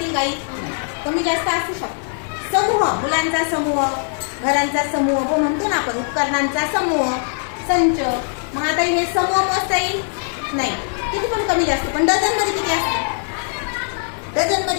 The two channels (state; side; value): silent; right; 60 dB below the other